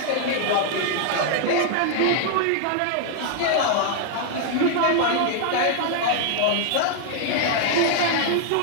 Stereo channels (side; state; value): both; different; correlation 0.00